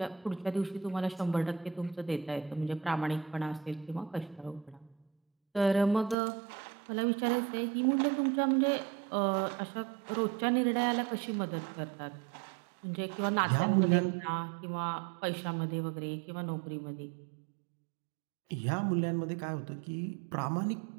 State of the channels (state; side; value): drops out; left; at 6.2 s